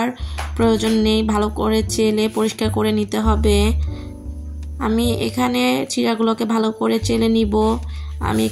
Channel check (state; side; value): identical; both; correlation 1.00